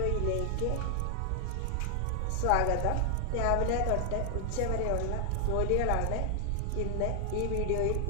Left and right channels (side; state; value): both; different; correlation 0.00